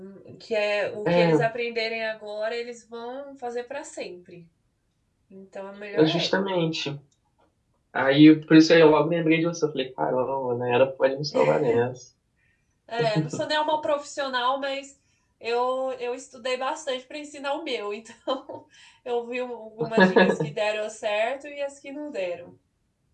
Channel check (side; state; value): both; identical; correlation 1.00